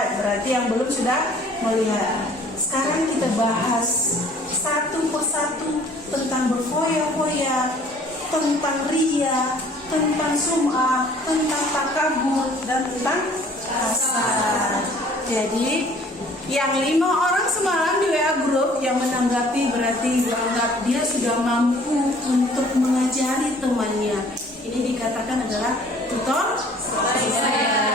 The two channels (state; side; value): normal; both; correlation 0.54